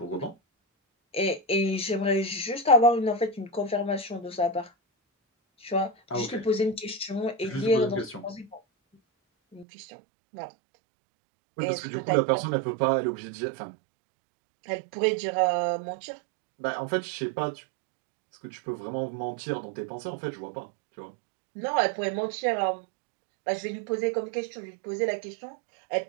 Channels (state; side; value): drops out; left; at 9.7 s